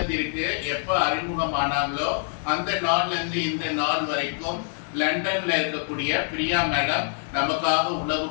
எப்ப அறிமுகமானாங்களோ அந்த நாள்ல இருந்து இந்த நாள் வரைக்கும் லண்டன்ல இருக்கக்கூடிய பிரியா மேடம் நமக்காக உணவு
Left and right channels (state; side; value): silent; right; digital silence